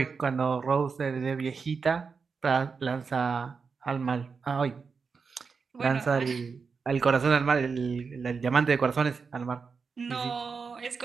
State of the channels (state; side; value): quieter; left; 5.2 dB